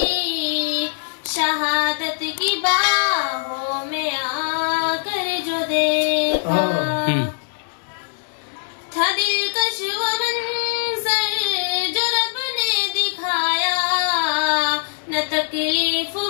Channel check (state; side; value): silent; right; digital silence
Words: शहादत की बाहों में आकर जो देखा, था दिलकश वो मंजर जो रब ने दिखाया, न तकलीफ